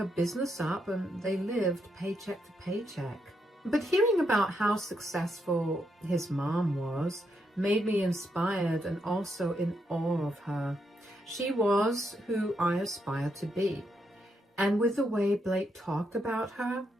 business up and they lived paycheck to paycheck. But hearing about how successful his mom was made me inspired and also in awe of her. She was who I aspired to be. And with the way Blake talked about her,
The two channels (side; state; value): both; normal; correlation 0.80